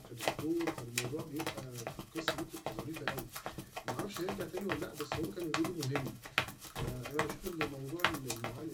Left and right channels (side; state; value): both; identical; correlation 1.00